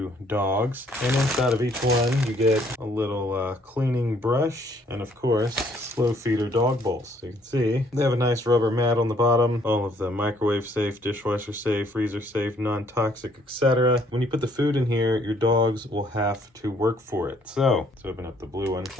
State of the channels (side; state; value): both; normal; correlation 0.65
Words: dogs. And inside of each one, you get a little cleaning brush and of course, slow feeder dog bowls. So you can see they have a nice rubber mat on the bottom. All of the microwave safe, dishwasher safe, freezer safe, non-toxic, etc. When you put the food in here, your dogs will have to work for it. So let's open up the blue one.